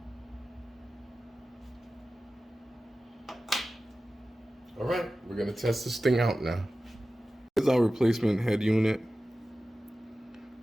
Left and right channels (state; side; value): normal; both; correlation 0.95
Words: All right, we're gonna test this thing out now. Here's our replacement head unit.